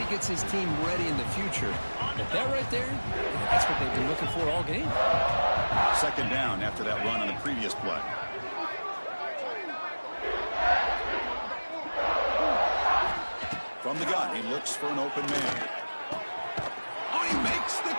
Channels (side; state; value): both; inverted; correlation -1.00